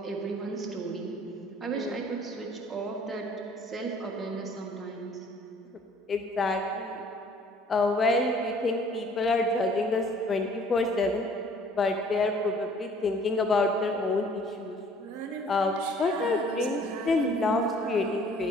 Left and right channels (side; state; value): both; normal; correlation 0.55